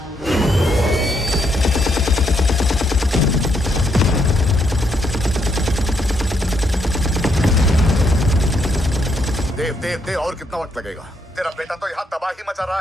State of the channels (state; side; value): normal; both; correlation 0.75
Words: देव, और कितना वक्त लगेगा? तेरा बेटा तो यहाँ तबाही मचा रहा